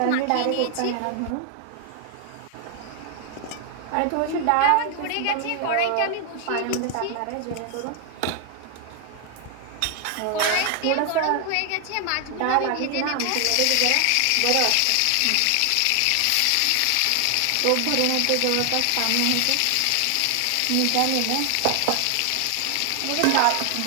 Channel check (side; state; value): both; different; correlation 0.00